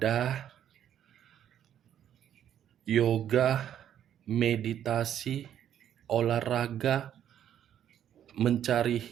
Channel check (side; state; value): left; quieter; 10.2 dB